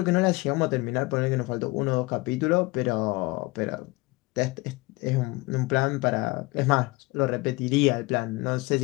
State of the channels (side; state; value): right; quieter; 23.0 dB